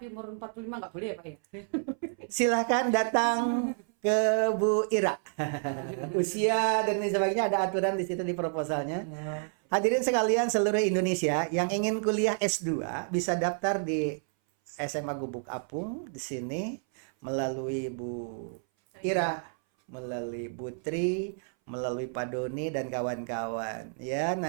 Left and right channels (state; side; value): silent; left; 58 dB below the other